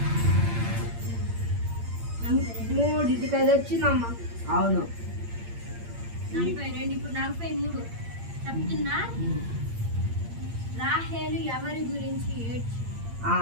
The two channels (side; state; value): left; late; 8.7 ms